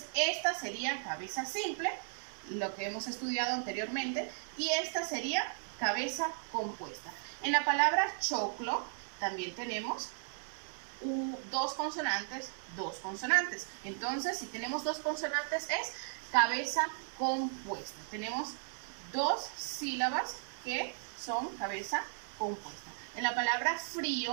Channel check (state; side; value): silent; left; digital silence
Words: esta sería cabeza simple, lo que hemos estudiado anteriormente, y esta sería cabeza compuesta. En la palabra choclo también tenemos 2 consonantes, 2 consonantes. Entonces, si tenemos 2 consonantes es cabeza compuesta. Tenemos 2 sílabas que son cabeza compuesta. En la palabra